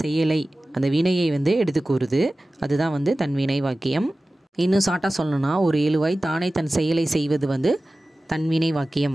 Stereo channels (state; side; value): normal; both; correlation 0.96